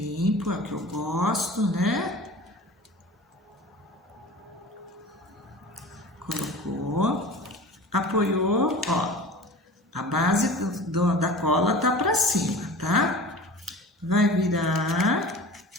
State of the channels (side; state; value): both; normal; correlation 0.38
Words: é o que eu gosto, né? Colocou, apoiou, ó, a base da cola tá para cima, tá? Vai virar,